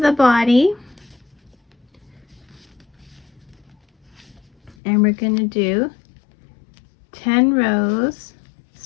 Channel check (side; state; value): right; drops out; at 4.8 s